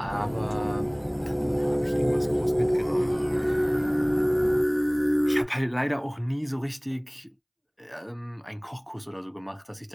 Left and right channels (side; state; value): both; identical; correlation 1.00